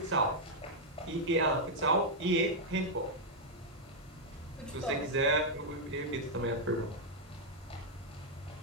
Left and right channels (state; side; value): normal; both; correlation -0.03